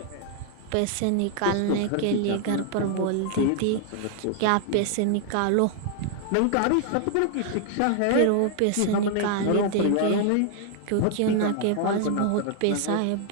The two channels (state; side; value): different; both; correlation 0.00